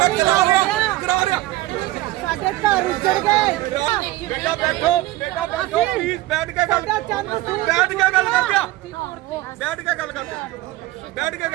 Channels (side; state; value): left; quieter; 17.7 dB